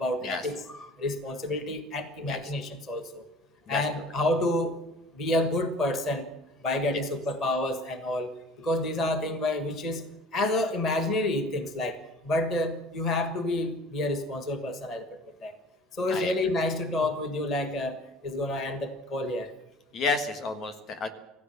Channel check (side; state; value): both; normal; correlation 0.46